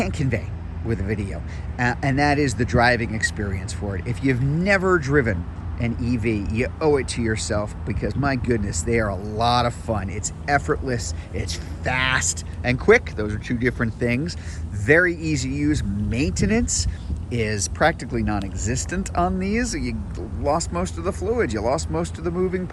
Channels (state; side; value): identical; both; correlation 1.00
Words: convey with a video, and that is the driving experience for it. If you've never driven an EV, you owe it to yourself, because my goodness, they are a lot of fun. It's effortless, it's fast and quick. Those are 2 different things. Very easy to use. Maintenance is practically non-existent on these. You lost most of the fluid, you lost most of the moving